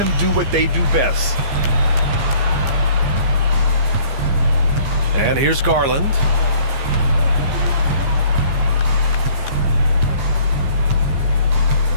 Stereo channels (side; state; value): left; late; 15 ms